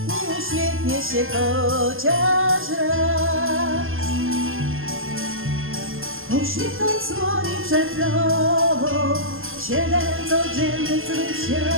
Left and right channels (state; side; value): late; left; 0.60 ms